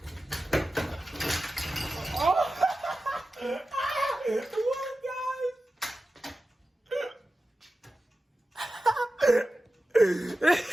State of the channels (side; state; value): both; normal; correlation 0.94